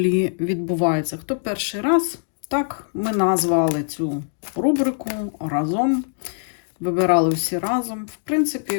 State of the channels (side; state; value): right; silent; digital silence